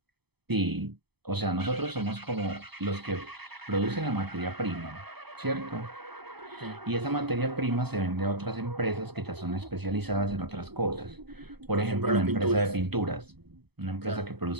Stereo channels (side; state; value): left; late; 0.98 ms